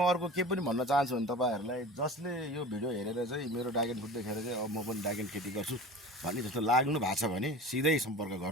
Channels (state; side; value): normal; both; correlation 0.35